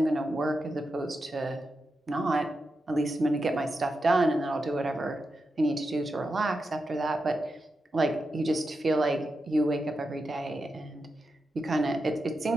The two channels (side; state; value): both; normal; correlation 0.88